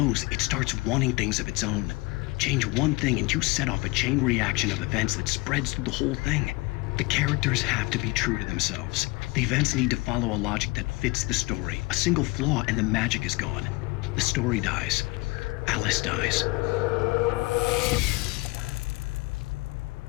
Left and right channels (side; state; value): right; quieter; 24.2 dB